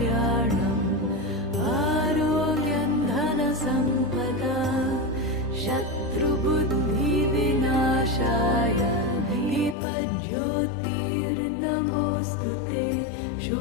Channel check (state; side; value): drops out; right; at 9.8 s